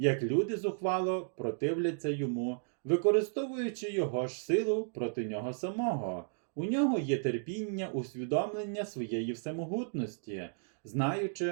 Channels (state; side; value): silent; left; digital silence